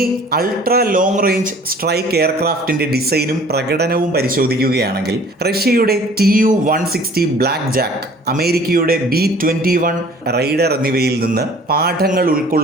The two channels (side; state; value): both; normal; correlation 0.51